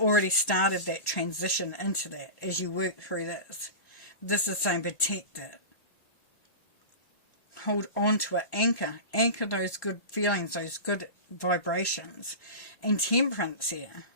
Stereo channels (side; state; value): right; late; 1.8 ms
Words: started that transition into that as you work through this. This is saying protect it. Hold on to it, anchor those good feelings, those good vibrations. And Temperance here.